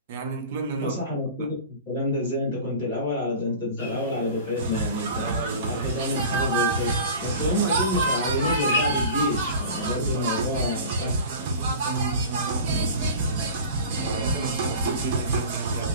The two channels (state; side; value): inverted; both; correlation -0.37